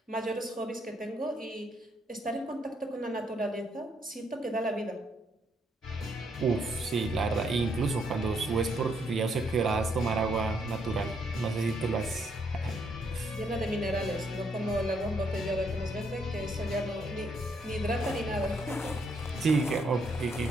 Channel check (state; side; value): normal; both; correlation 0.73